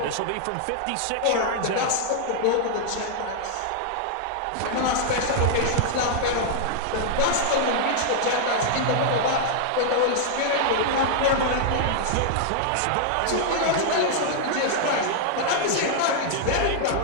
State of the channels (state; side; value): different; both; correlation -0.01